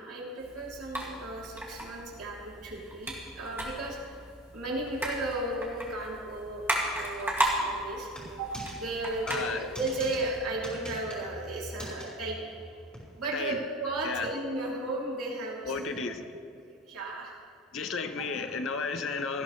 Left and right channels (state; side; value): normal; both; correlation 0.32